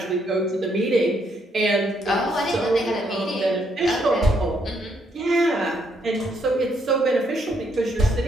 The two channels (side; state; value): both; normal; correlation 0.73